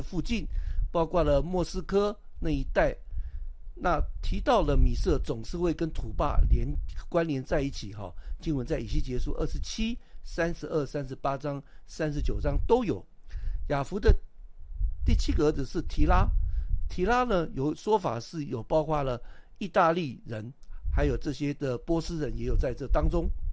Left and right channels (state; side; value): identical; both; correlation 1.00